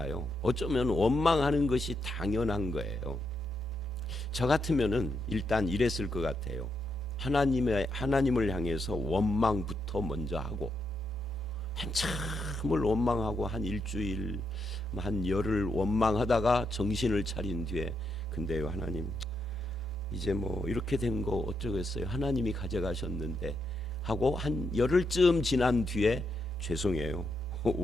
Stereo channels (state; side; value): normal; both; correlation 0.81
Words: 어쩌면 원망하는 것이 당연한 거예요. 저 같으면은 일단 이랬을 것 같아요. 하나님을 향해서 원망부터 먼저 하고, 한참을 원망하고 한 일주일, 한 열흘 원망하다가 정신을 차린 뒤에, 근데요 하나님, 이제 뭐 이렇게 된 거 어쩌겠어요, 하나님이 가져가셨는데 하고 한 열흘쯤 지난 뒤에 죄송해요